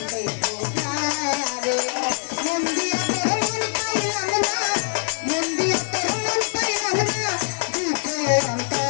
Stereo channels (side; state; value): right; silent; digital silence